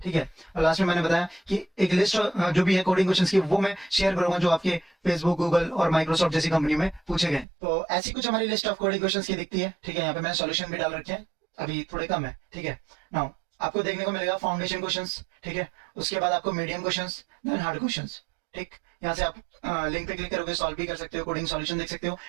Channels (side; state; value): left; drops out; at 7.5 s